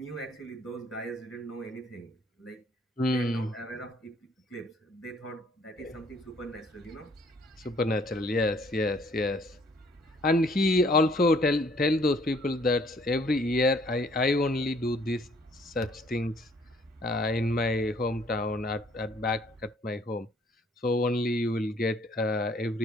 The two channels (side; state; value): both; normal; correlation 0.61